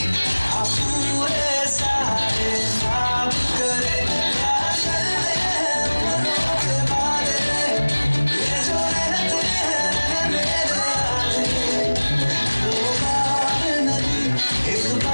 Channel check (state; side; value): inverted; both; correlation -1.00